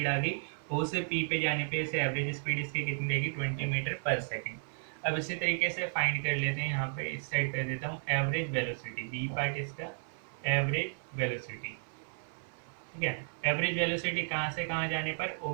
आ गई। O से P पे जाने पे इसे एवरेज स्पीड इसकी कितनी देगी, 20 मीटर पर सेकेंड। अब इसी तरीके से फाइंड कर लेते हैं, यहाँ पे इस साइड कर देता हूँ एवरेज वेलोसिटी, बी पार्ट इसका एवरेज वेलोसिटी। ठीक है, एवरेज वेलोसिटी कहाँ से कहाँ जाने पर,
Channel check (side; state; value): left; silent; 55 dB below the other